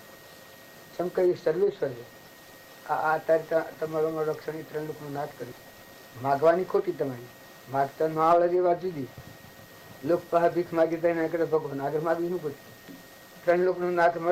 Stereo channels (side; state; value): both; identical; correlation 1.00